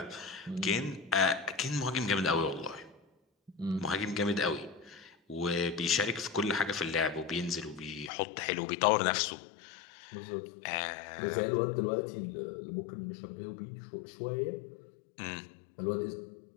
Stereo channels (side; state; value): right; drops out; at 8.1 s